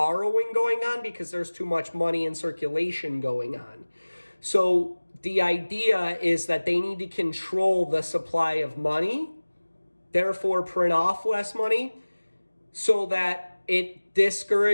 going on because there's too much money in circulation going on. So the idea is that they need to control the supply of money, therefore print off less money, so that it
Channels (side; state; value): both; inverted; correlation -1.00